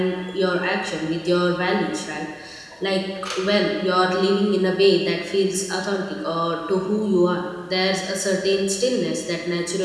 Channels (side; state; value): both; identical; correlation 1.00